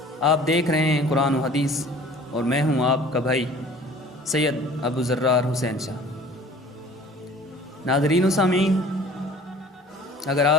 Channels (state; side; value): normal; both; correlation 0.48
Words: آپ دیکھ رہے ہیں قرآن و حدیث، اور میں ہوں آپ کا بھائی سید ابو ذرار حسین شاہ۔ ناظرین و سامعین، اگر